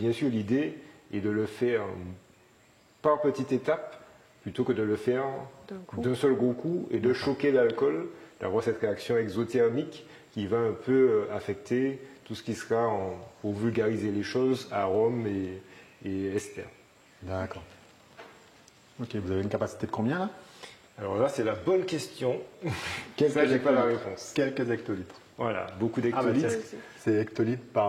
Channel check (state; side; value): identical; both; correlation 1.00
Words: sûr l'idée est de le faire par petites étapes, plutôt que de le faire d'un seul gros coup et de choquer l'alcool, d'avoir cette réaction exothermique qui va un peu affecter tout ce qui sera, pour vulgariser les choses, arômes et ester. D'accord. Ok, vous avez une capacité de combien là? Alors là, c'est la bonne question. Ça, j'ai pas la réponse. Quelques hectolitres. Voilà, beaucoup d'hectolitres. C'est hectolitres